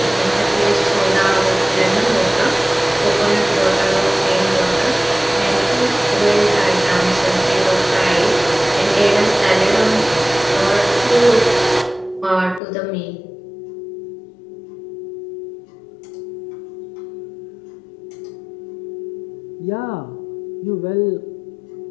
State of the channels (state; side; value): drops out; right; at 12.6 s